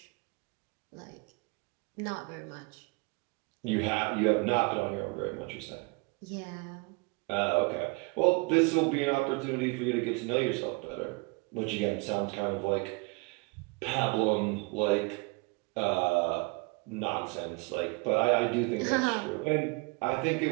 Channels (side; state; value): left; quieter; 29.6 dB